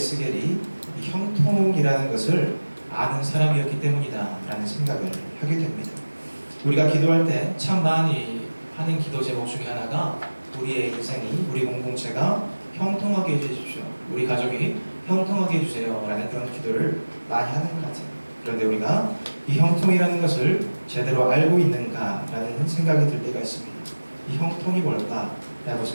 이 형통이라는 것을 아는 사람이었기 때문이다라는 생각을 하게 됩니다. 우리가 기도할 때 참 많이 하는 기도 제목 중에 하나가 우리의 인생이, 우리 공동체가 형통하게 해주십시오. 우리 가족이 형통하게 해주세요. 라는 그런 기도를 많이 하는 것 같아요. 그런데 우리가 이 형통이라는 것을 제대로 알고 있는가라는 생각이 들 때가 있습니다. 이 형통이 뭘까? 라고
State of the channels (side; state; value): both; inverted; correlation -1.00